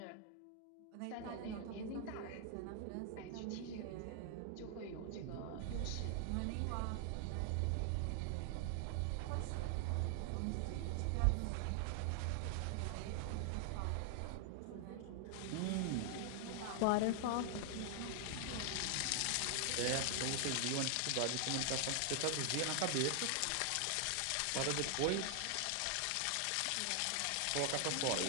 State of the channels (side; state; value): both; different; correlation 0.00